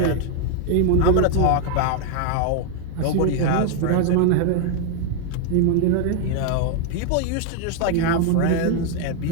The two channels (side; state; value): both; different; correlation 0.00